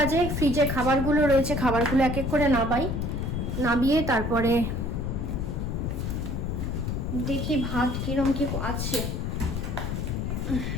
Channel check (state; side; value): noise; left; rumble, 1 dB below the sound